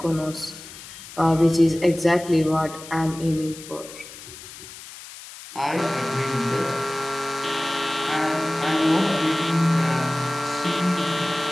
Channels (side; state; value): left; noise; hiss, 15 dB below the sound